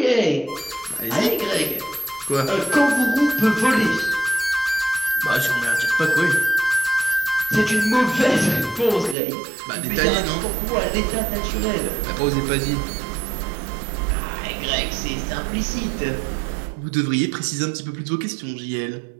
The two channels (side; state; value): left; drops out; at 9.2 s